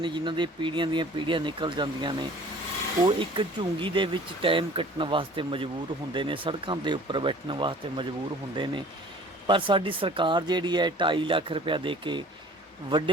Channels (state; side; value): normal; both; correlation 0.48